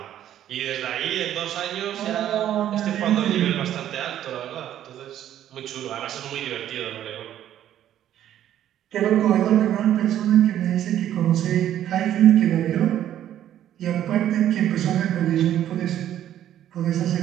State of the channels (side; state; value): left; quieter; 11.4 dB